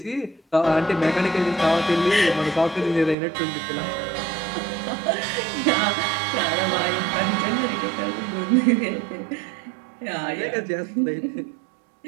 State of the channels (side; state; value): left; drops out; at 3.2 s